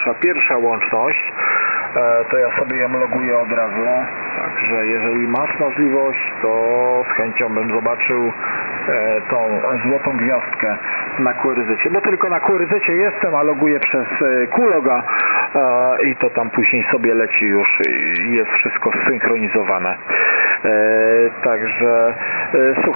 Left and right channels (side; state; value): both; inverted; correlation -1.00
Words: pierwsza łączność, to ja sobie ją loguję od razu, także jeżeli masz możliwość, to z chęcią bym zobaczył tą złotą gwiazdkę na QRZ, bo tylko na QRZ jestem, a loguję przez Qloga i to tam później sobie leci już i jest wszystko zsynchronizowane. Także